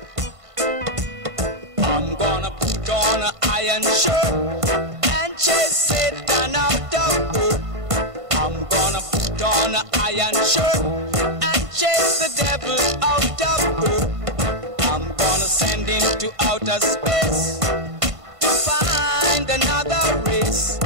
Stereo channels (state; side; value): late; left; 1.5 ms